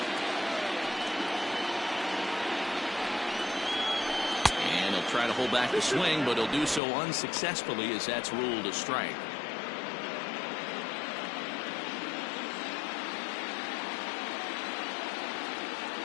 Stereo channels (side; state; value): right; drops out; at 6.8 s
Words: And he'll try to hold back the swing, but he'll do so unsuccessfully as that's ruled a strike.